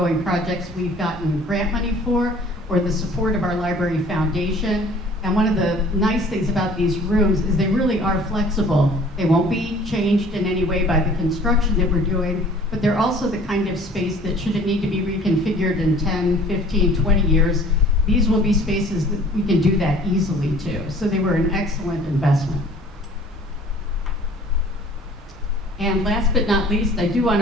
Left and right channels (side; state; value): both; normal; correlation 0.51